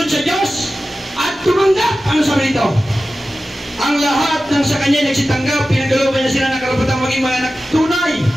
sa Diyos, at tumanggap. Ano sabi nito? Ang lahat ng sa kanya nagsitanggap, pinagkalooban niya sila na karapatang maging mga anak tunay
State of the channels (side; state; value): both; normal; correlation 0.95